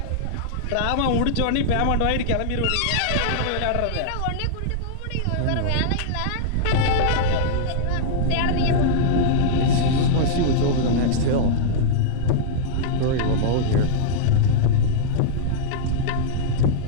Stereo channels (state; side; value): different; both; correlation -0.02